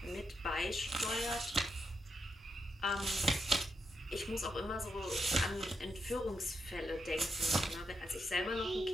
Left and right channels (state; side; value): normal; both; correlation 0.83